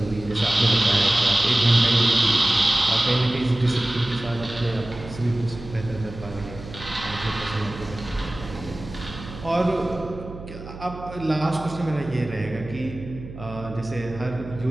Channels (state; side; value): noise; right; hum, 13 dB below the sound